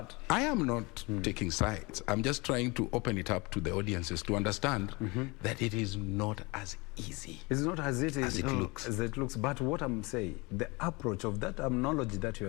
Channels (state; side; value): quieter; right; 26.0 dB